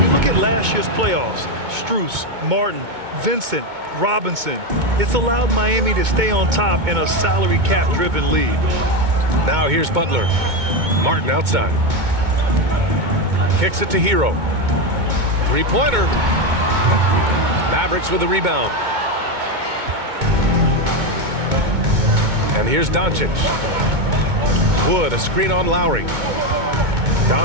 look at last year's playoffs. Strus, Martin, Vincent, Robinson. It's allowed Miami to stay on top in a salary cap-driven league. Now here's Butler. Martin outside. Kicks it to Hero. Three-pointer. Mavericks with the rebound. And here's Doncic. Wood, a screen on Lowry.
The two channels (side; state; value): left; late; 2.2 ms